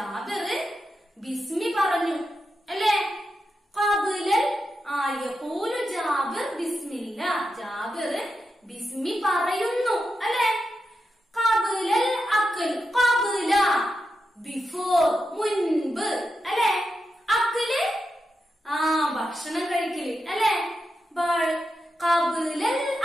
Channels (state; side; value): normal; both; correlation 0.88